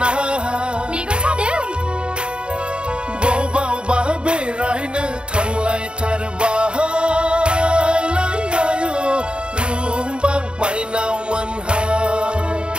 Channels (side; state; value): left; late; 0.052 ms